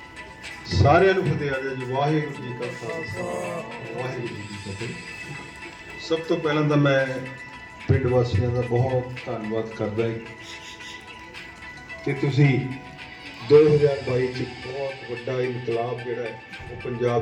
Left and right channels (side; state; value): both; identical; correlation 1.00